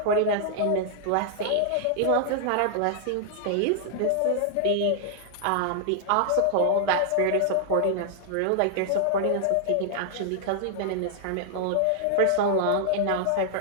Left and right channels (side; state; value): both; different; correlation -0.01